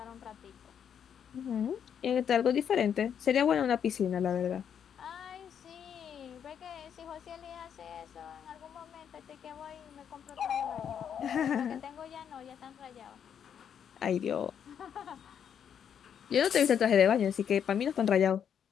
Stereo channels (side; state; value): right; quieter; 8.3 dB